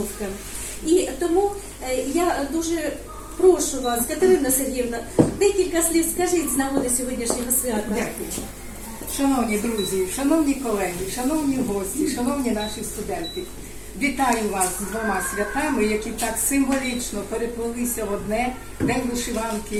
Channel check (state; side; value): identical; both; correlation 1.00